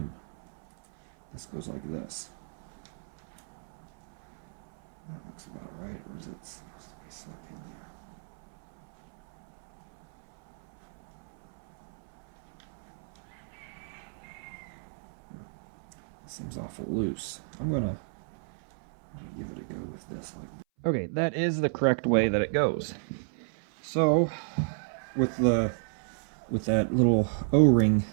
this goes like this. That looks about right, or is it supposed to be sunk in there? It seems awful loose. I'm gonna give it a go with this. Okay, that is the correct way that it goes. So, with that little O-ring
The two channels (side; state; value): left; silent; 56 dB below the other